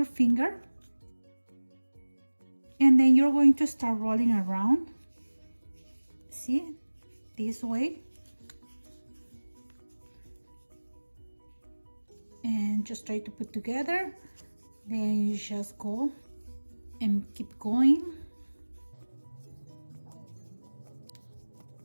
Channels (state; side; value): inverted; both; correlation -1.00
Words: finger, and then you're going to start rolling around. See, this way, and just try to put together. Then you just go and keep going.